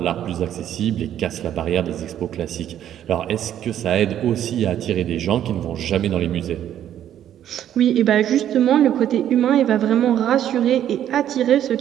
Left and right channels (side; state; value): left; quieter; 10.8 dB